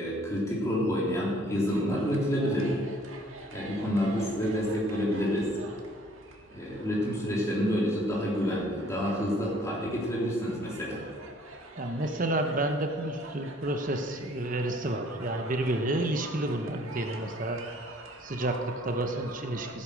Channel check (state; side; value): normal; both; correlation 0.58